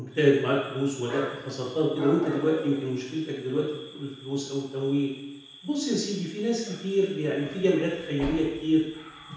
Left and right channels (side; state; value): both; identical; correlation 1.00